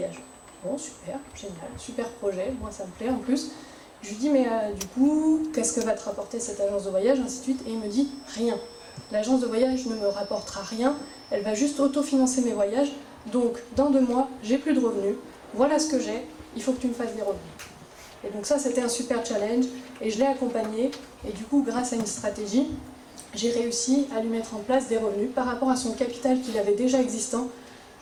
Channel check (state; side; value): identical; both; correlation 1.00